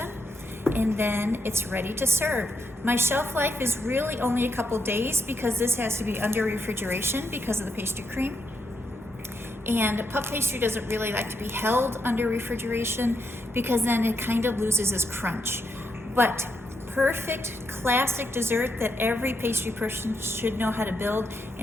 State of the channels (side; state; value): both; normal; correlation 0.80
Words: and then it's ready to serve. My shelf life is really only a couple days because this has to be under refrigeration because of the pastry cream. And puff pastry doesn't really like to be held under refrigeration because then it kind of loses its crunch. But perfect classic dessert that every pastry person should know how to build.